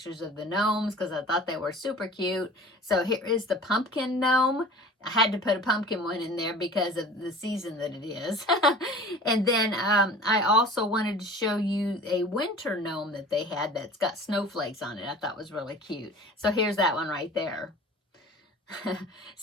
of the gnomes because I thought they were super cute. So here is the pumpkin gnome. I had to put a pumpkin one in there because of the season that it is. And then I also wanted to show you a winter gnome that they had that's got snowflakes on it. I thought was really cute. So here's that one right there.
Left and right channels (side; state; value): both; normal; correlation 0.42